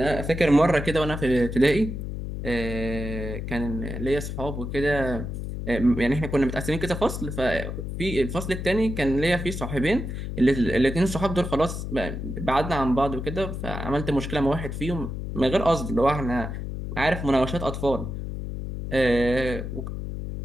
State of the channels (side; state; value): left; noise; hum, 6 dB below the sound